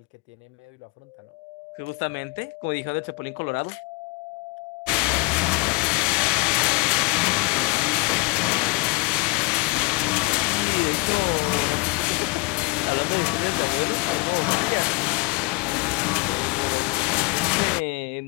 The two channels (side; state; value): right; quieter; 26.2 dB